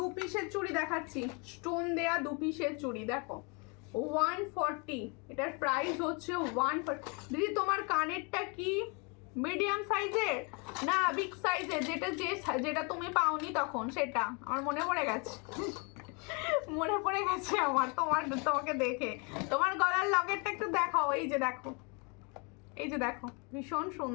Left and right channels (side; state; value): right; quieter; 32.9 dB